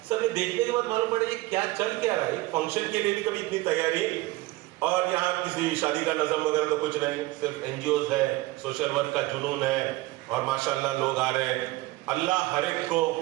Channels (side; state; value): left; quieter; 19.4 dB